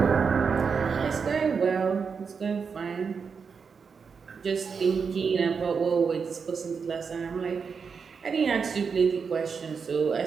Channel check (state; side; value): quieter; left; 5.8 dB